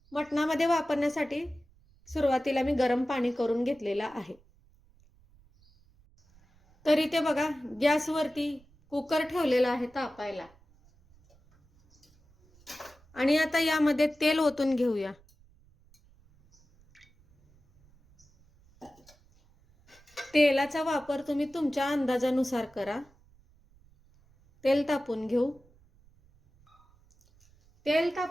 मटणामध्ये वापरण्यासाठी सुरुवातीला मी गरम पाणी करून घेतलेलं आहे। तर इथे बघा, गॅसवरती कुकर ठेवलेला आहे तापायला आणि आता यामध्ये तेल ओतून घेऊया। तेलाचा वापर तुम्ही तुमच्या अंदाजानुसार करा। तेल तापून घेऊ। तेल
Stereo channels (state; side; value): noise; right; rumble, 30 dB below the sound